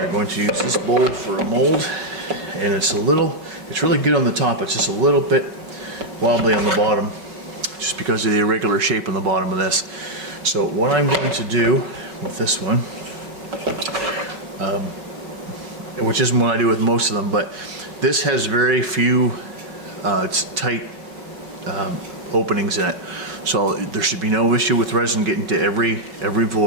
going to use this bowl for a mold, and it's really good on the top, it's just a little bit wobbly on the bottom just because of the irregular shape on the bottom of this. So what I'm going to do with this one, which isn't what I do with most of them, but this has very few tight openings in it, so there should be no issue with resin getting to every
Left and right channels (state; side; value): late; left; 5.3 ms